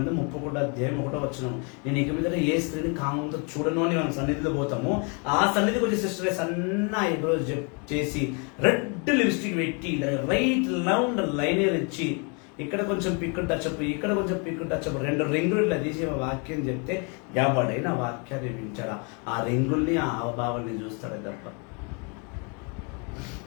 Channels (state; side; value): quieter; right; 34.4 dB